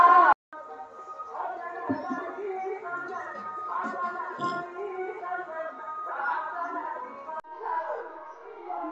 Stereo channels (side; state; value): both; identical; correlation 1.00